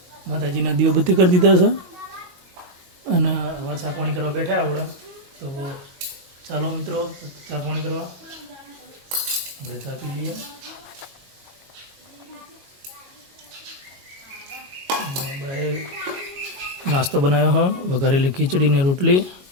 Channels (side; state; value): left; late; 22 ms